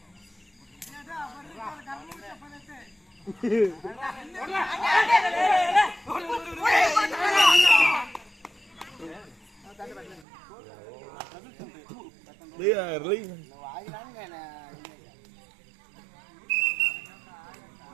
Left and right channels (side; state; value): left; drops out; at 10.2 s